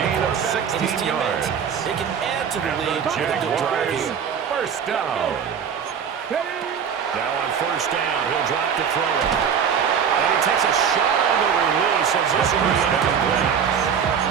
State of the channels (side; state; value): left; quieter; 7.4 dB